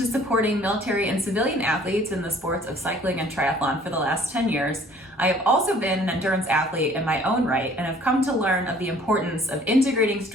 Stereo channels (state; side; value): normal; both; correlation 0.55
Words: supporting military and civilian athletes in the sports of cycling and triathlon for the last 10 years, I have also been an endurance athlete in my own right and have come to learn of the importance of integrating